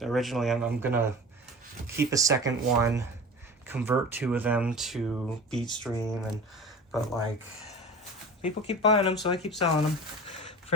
gonna keep a second one, convert 2 of them to Beatstream, but like people keep buying them, so I keep selling them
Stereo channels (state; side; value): normal; both; correlation 0.36